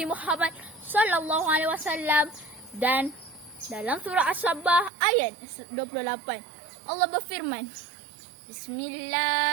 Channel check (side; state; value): left; drops out; at 4.9 s